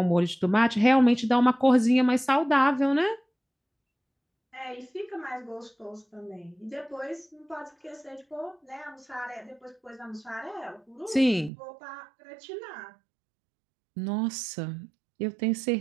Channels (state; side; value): drops out; left; at 11.5 s